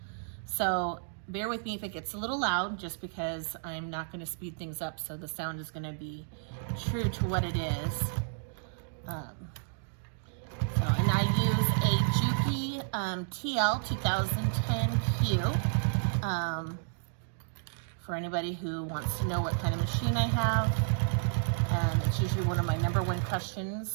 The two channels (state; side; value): silent; left; digital silence